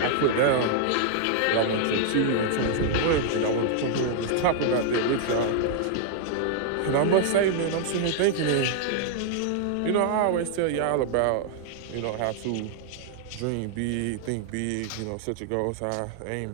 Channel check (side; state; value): both; different; correlation -0.01